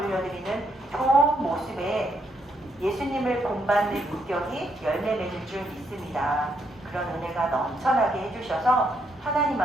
좋은 모습에 예수님을 본받는 인격이 열매 맺을 줄 믿습니다. 그런 은혜가 넘쳐나게 해주셔서 하나님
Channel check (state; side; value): normal; both; correlation 0.75